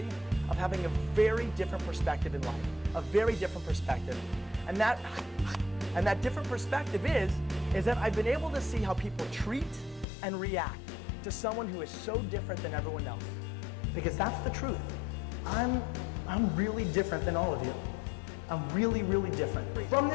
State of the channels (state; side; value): drops out; right; at 10.1 s